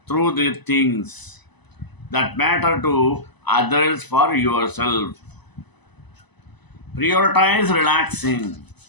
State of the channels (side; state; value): right; late; 1.0 ms